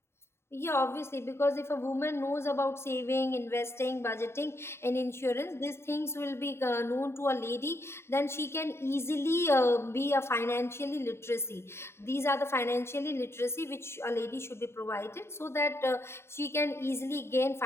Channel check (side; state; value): right; late; 0.12 ms